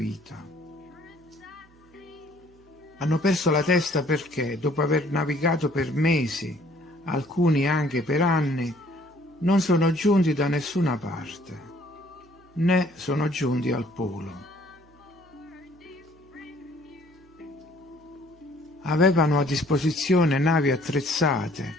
Hanno perso la testa perché, dopo aver navigato per mesi, alcuni anche per anni, non sono giunti da nessuna parte, né sono giunti al polo. Avevano a disposizione navi attrezzate,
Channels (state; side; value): noise; right; hum, 28 dB below the sound